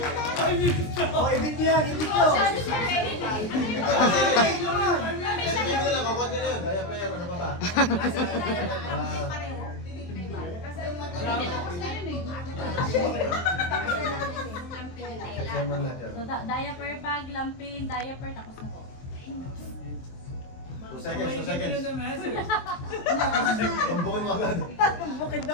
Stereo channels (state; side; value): late; right; 23 ms